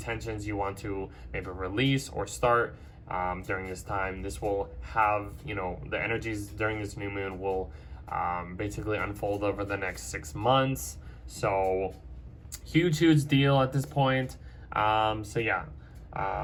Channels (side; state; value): both; identical; correlation 1.00